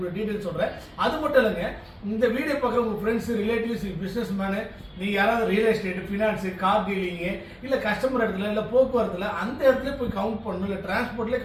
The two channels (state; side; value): identical; both; correlation 1.00